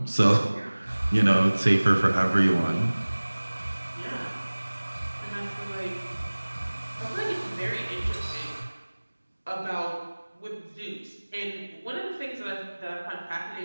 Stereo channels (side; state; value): both; inverted; correlation -1.00